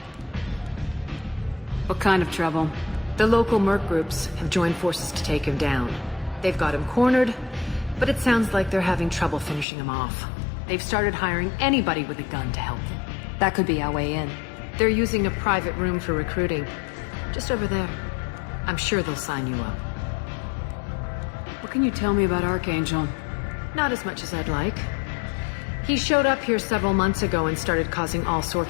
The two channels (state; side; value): drops out; right; at 9.7 s